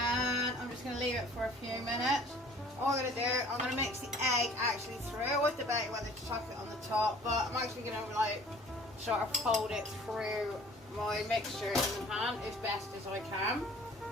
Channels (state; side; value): normal; both; correlation 0.51